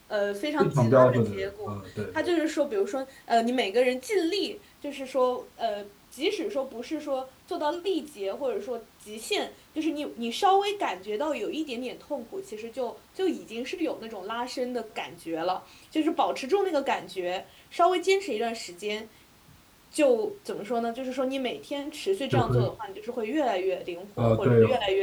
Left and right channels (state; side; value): identical; both; correlation 1.00